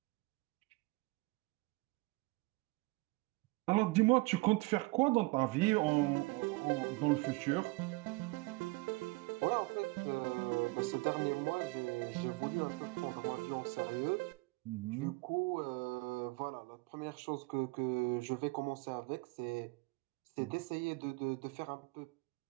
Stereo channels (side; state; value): left; quieter; 24.4 dB